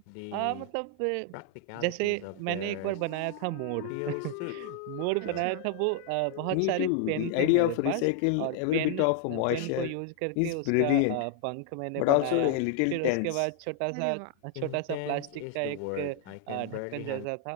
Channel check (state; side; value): different; both; correlation 0.00